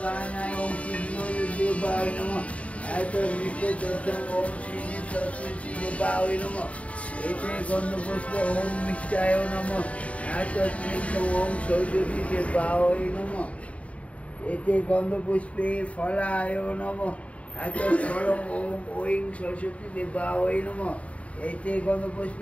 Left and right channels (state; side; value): late; right; 0.065 ms